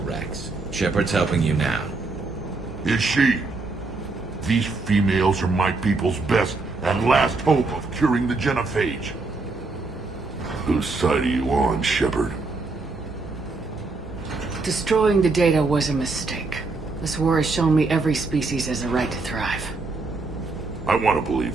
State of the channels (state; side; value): quieter; left; 3.7 dB